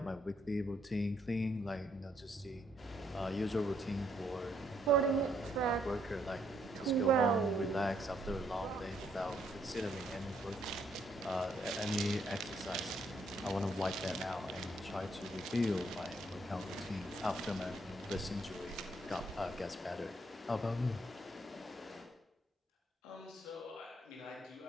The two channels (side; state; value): both; normal; correlation 0.72